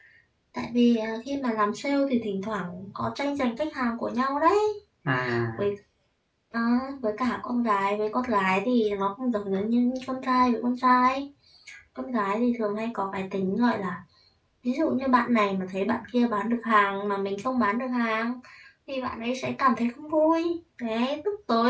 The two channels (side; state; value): both; identical; correlation 1.00